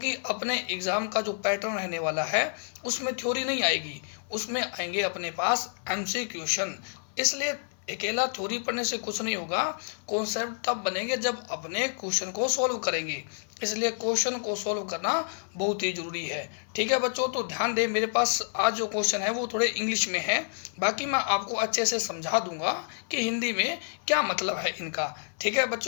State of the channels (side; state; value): right; silent; 59 dB below the other